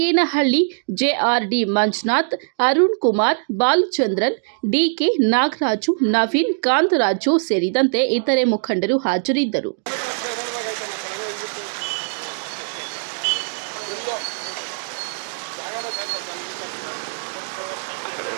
ಜೆಆರ್ಡಿ ಮಂಜುನಾಥ್, ಅರುಣ್ ಕುಮಾರ್, ಬಾಲಚಂದ್ರನ್, ಡಿಕೆ ನಾಗರಾಜು, ನವೀನ್, ಕಾಂತರಾಜು ಸೇರಿದಂತೆ ಇತರೆ ಮುಖಂಡರು ಹಾಜರಿದ್ದರು.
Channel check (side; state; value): left; silent; digital silence